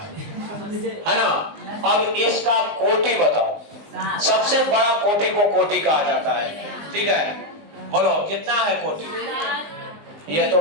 है ना। अब इसका कोटि बताओ, सबसे बड़ा कोटि को कोटि कहा जाता है, ठीक है। बोलो कितना है कोटि? ये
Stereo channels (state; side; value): late; left; 20 ms